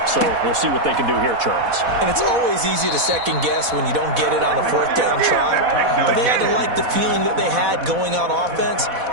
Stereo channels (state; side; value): late; left; 4.1 ms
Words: So we'll see what they can do here, Charles. And it's always easy to second guess when you don't get it on a 4th down try. But they had to like the feeling that they had going on offense.